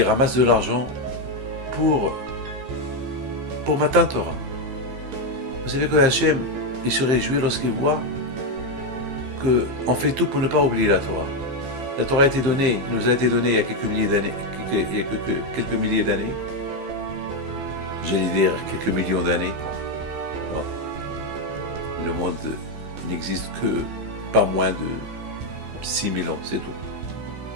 ramassent de l'argent pour matin Torah. Vous savez que Hachem, il se réjouit lorsqu'il voit qu'on fait tout pour ne pas oublier la Torah. La Torah nous a été donnée il y a quelques milliers d'années. J'allais dire quelques millions d'années. Non. Le monde n'existe que pas moins de 6000 ans, c'est tout.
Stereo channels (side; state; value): left; late; 15 ms